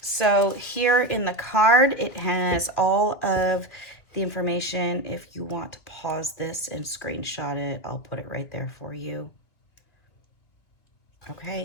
so here in the card, it has all of the information. If you want to pause this and screenshot it, I'll put it right there for you.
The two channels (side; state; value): right; late; 2.5 ms